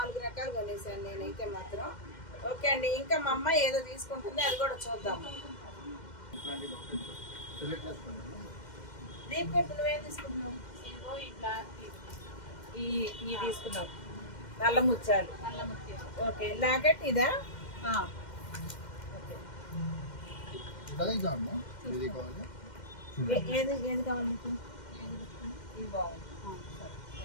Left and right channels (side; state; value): right; late; 2.1 ms